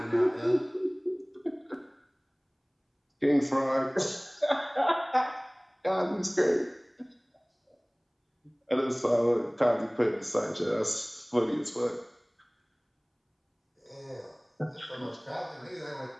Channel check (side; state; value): both; identical; correlation 1.00